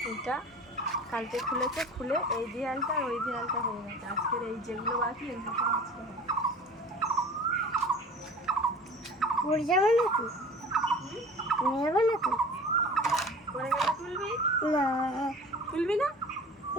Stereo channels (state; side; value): normal; both; correlation 0.42